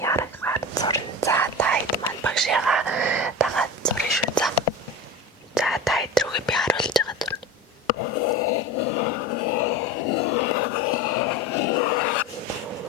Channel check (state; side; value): normal; both; correlation 0.29